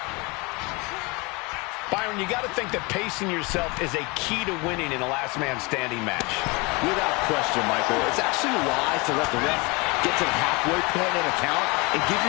Byron, you got to think that pacing yourself is a key to winning in a last man standing match. Without question, Michael. It's actually wise to let the ref get to the halfway point in a count and give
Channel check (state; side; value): quieter; right; 27.0 dB